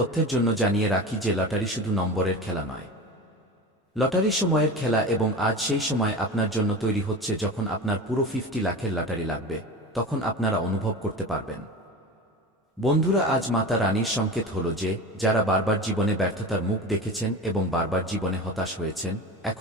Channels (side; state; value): both; normal; correlation 0.30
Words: জন্য জানিয়ে রাখি যে লটারি শুধু নম্বরের খেলা নয়। লটারি সময়ের খেলা, এবং আজ সেই সময় আপনার জন্য তৈরি হচ্ছে যখন আপনার পুরো 50 লাখের লটারি লাগবে, তখন আপনারা অনুভব করতে পারবেন। বন্ধুরা, আজ মাতা রানীর সংকেত হলো যে যারা বারবার জীবনে ব্যর্থতার মুখ দেখেছেন এবং বারবার জীবনে হতাশ হয়েছেন,